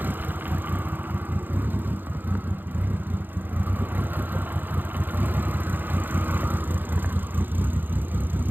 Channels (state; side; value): late; left; 0.090 ms